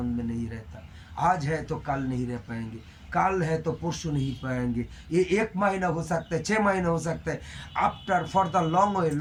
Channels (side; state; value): both; identical; correlation 1.00